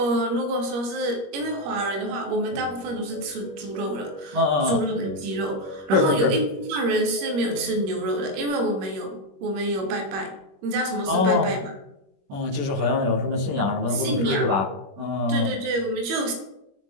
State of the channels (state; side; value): late; left; 21 ms